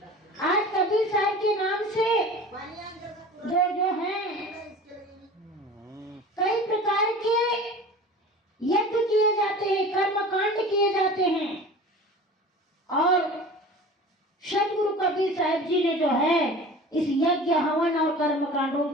आज कबीर साहब के नाम से जो हैं कई प्रकार के यज्ञ किए जाते हैं, कर्मकांड किए जाते हैं और सदगुरु कबीर साहब जी ने जो है इस यज्ञ हवन और कर्मकांडों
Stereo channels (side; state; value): both; normal; correlation 0.39